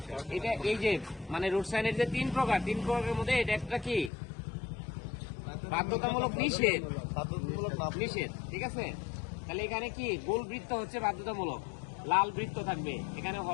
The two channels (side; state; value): right; drops out; at 4.1 s